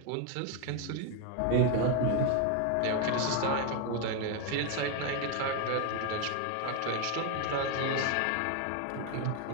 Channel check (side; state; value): both; different; correlation 0.01